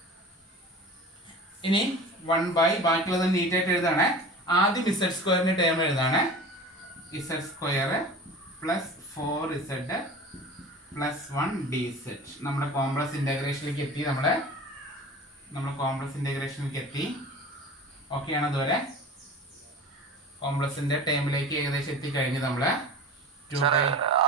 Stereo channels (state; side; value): normal; both; correlation 0.37